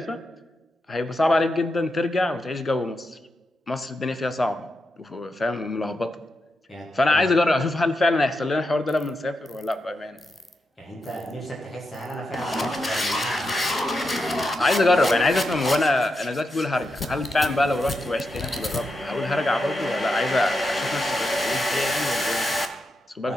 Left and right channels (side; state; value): both; normal; correlation 0.86